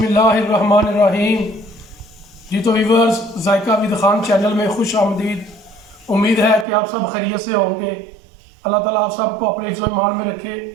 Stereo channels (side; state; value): left; drops out; at 6.7 s